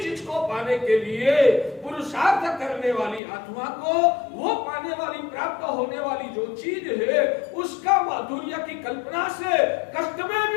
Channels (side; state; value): right; drops out; at 3.2 s